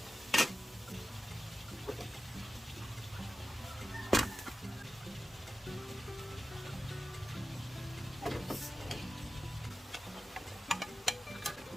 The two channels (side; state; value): both; normal; correlation 0.93